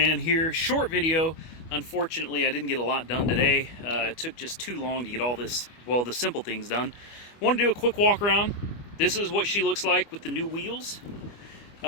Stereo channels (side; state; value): right; late; 25 ms